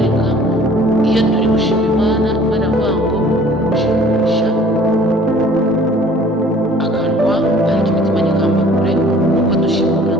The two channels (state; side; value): normal; both; correlation 0.52